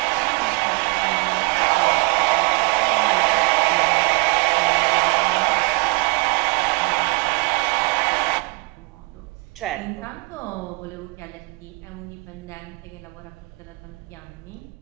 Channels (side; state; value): left; quieter; 30.9 dB